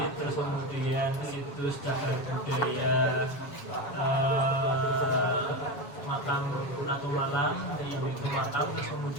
terus kemudian situs cagar budaya makam Ratu Malang yang itu makam, terus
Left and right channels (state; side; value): late; right; 7.3 ms